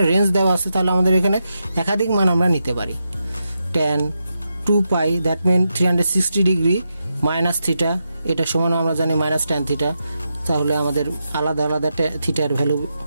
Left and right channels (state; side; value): inverted; both; correlation -0.86